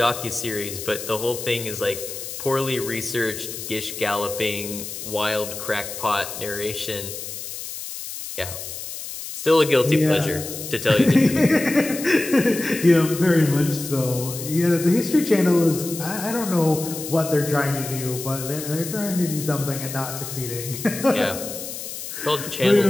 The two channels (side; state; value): left; noise; hiss, 9 dB below the sound